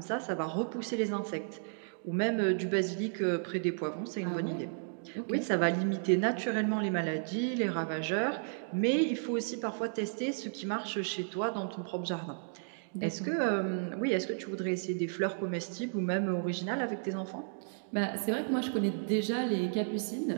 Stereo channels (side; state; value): left; silent; digital silence